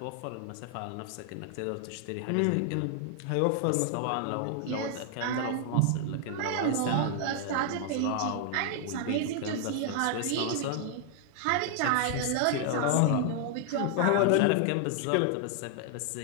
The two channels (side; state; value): both; different; correlation 0.00